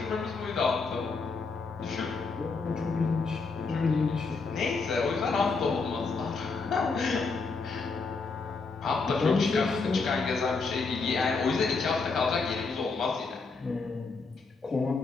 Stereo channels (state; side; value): quieter; right; 4.3 dB